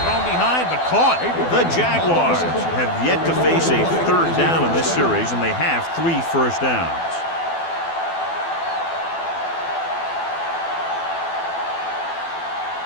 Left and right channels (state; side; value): late; right; 12 ms